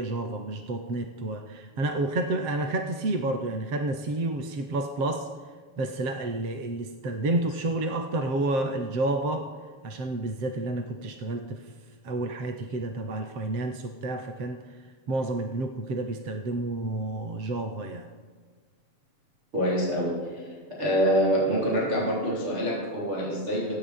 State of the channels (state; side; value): late; left; 7.6 ms